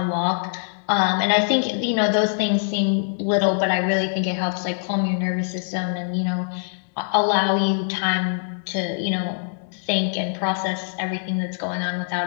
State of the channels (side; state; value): right; silent; 63 dB below the other